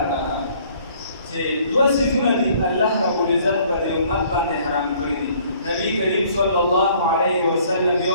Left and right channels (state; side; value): inverted; both; correlation -0.59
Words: کړه چې دوه صفونه دي الله رب العزت په دې امت باندې حرام کړی دي. نبی کریم صلی الله علیه وسلم